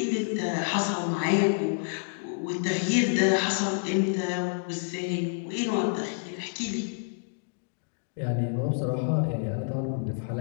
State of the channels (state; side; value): silent; right; digital silence